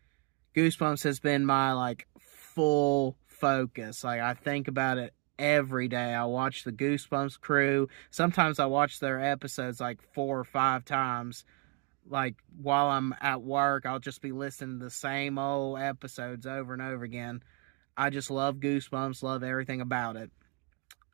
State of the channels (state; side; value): quieter; left; 30.3 dB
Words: Goosebumps has been my like full focus. Like I think about it every day. I watch the Goosebumps crew. Sometimes I watch their episodes like 4 or 5 times. Like while I'm at work, I'll just be listening to the same old episodes over and over again. I just love Goosebumps, love everything about it.